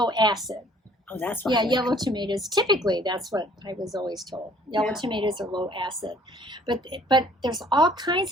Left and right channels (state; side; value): normal; both; correlation 0.57